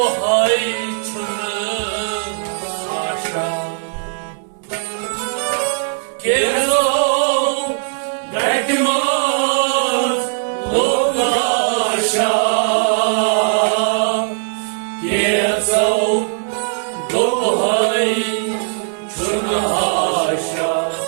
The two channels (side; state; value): left; silent; 67 dB below the other